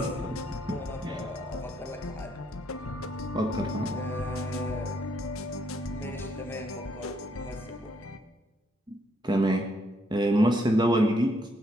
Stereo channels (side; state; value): both; normal; correlation 0.72